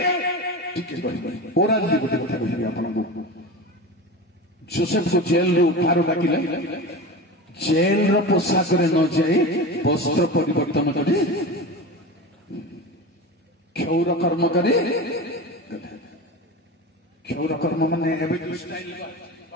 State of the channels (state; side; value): normal; both; correlation 0.28